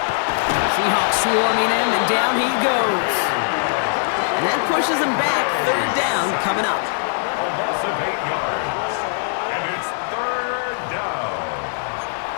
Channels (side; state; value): right; silent; digital silence